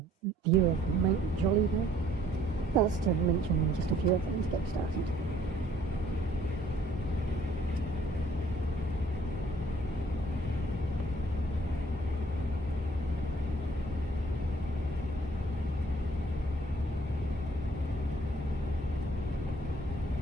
view of Mount Jolivet. That's to mention just a few of them to get started.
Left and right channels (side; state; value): both; normal; correlation 0.60